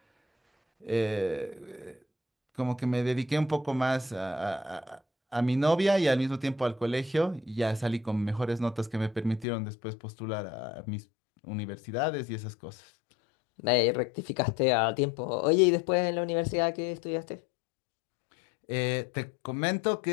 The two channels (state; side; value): drops out; right; at 9.5 s